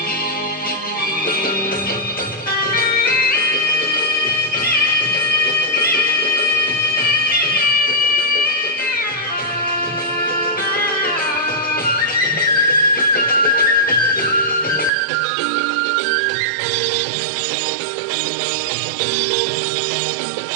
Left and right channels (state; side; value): drops out; left; at 14.9 s